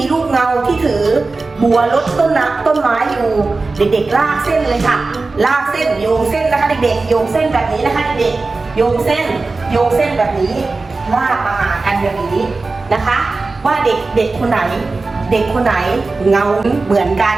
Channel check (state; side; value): quieter; left; 3.7 dB